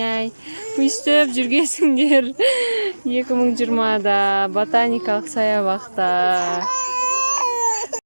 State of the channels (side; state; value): both; inverted; correlation -1.00